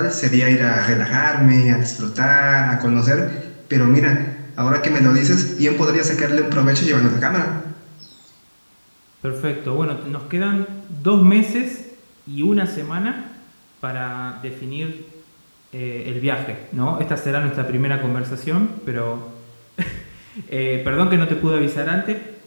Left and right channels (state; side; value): inverted; both; correlation -1.00